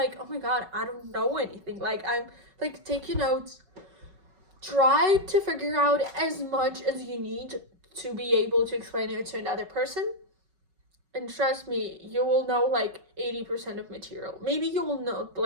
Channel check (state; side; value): late; left; 5.3 ms